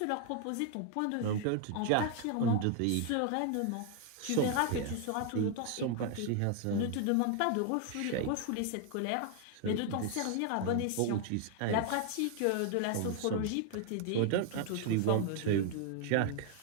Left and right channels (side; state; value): both; different; correlation 0.00